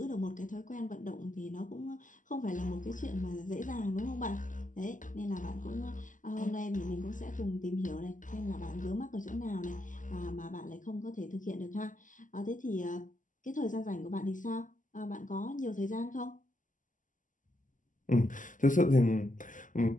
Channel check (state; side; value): late; right; 0.38 ms